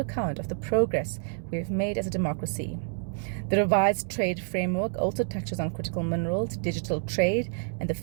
of the progress we have made as a democracy. The revised trade framework also touches on critical minerals, digital trade, and the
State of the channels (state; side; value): silent; left; digital silence